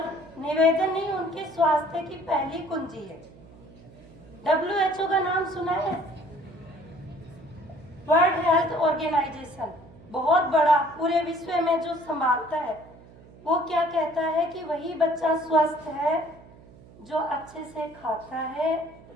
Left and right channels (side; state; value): right; noise; hum, 22 dB below the sound